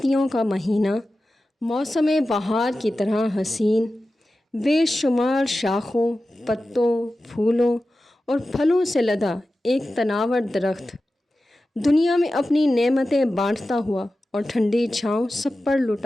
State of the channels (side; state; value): both; normal; correlation 0.94